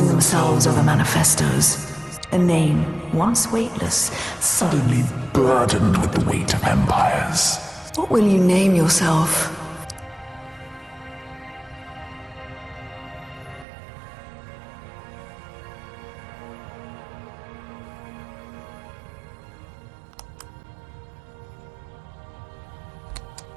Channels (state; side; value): drops out; left; at 13.7 s